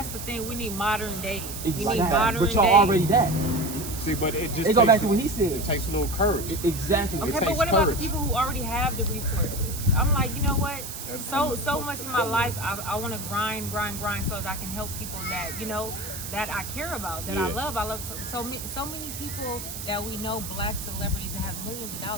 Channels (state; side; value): noise; right; hiss, 8 dB below the sound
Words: the thing. We need modern day. Exactly. We need modern but y'all day. already that. See, but it just It go back to what he said. It takes a little courage. Exactly. Okay, but what about the people who already have the resources? I'm like, you know what? So much in my life, I want to grind so that I can help people that, that I care about, that I love. I love so many people that we know, black celebrities that have millions of